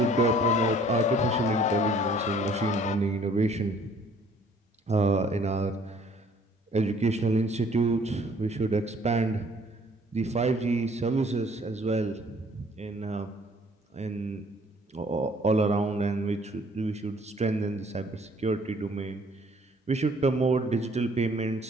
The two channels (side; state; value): both; normal; correlation 0.58